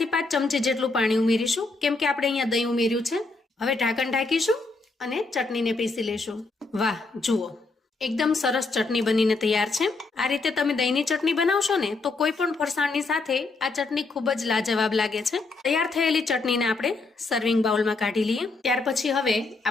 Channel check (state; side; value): quieter; right; 3.7 dB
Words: થી 5 ચમચી જેટલું પાણી ઉમેરીશું, કેમ કે આપણે અહીંયા દહીં ઉમેર્યું છે. હવે ઢાંકણ ઢાંકીશું અને ચટણીને પીસી લેશું. વાહ, જુઓ, એકદમ સરસ ચટણી બનીને તૈયાર છે. આ રીતે તમે દહીંની ચટણી બનાવશો ને તો કોઈ પણ ફરસાણની સાથે આ ચટણી ખૂબ જ લાજવાબ લાગે છે. તૈયાર થયેલી ચટણીને આપણે સર્વિંગ બાઉલમાં કાઢી લઈએ. ત્યાર પછી હવે